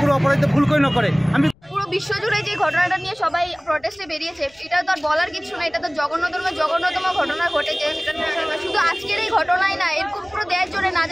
কোনো অপরাধী ভুল করে নকরে। আমি পুরো বিশ্বজুড়ে যে ঘটনাটা নিয়ে সবাই প্রটেস্টে বেরিয়েছে, এটা তো আর বলার কিছু না। এটা তো জঘন্যতম ঘটনা ঘটেছে। শুধু আজকের এই ঘটনাই না, এরকম পুরো দেশ জুড়ে না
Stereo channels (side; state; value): left; noise; rumble, 30 dB below the sound